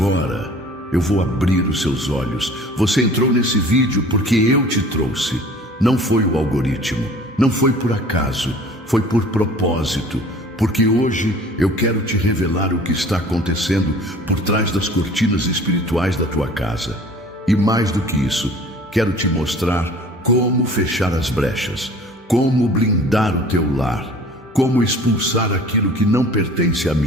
eu vou abrir os seus olhos. Você entrou nesse vídeo porque eu te trouxe. Não foi o algoritmo, não foi por acaso, foi por propósito. Porque hoje eu quero te revelar o que está acontecendo por trás das cortinas espirituais da tua casa. E mais do que isso, quero te mostrar como fechar as brechas, como blindar o teu lar, como expulsar aquilo que não pertence a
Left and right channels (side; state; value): both; normal; correlation 0.48